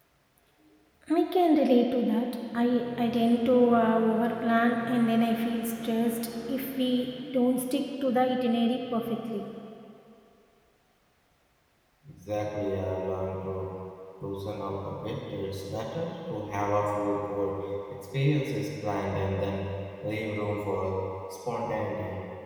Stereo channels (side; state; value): both; identical; correlation 1.00